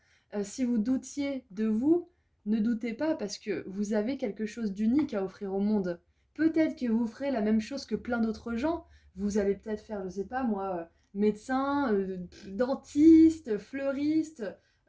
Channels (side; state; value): both; identical; correlation 1.00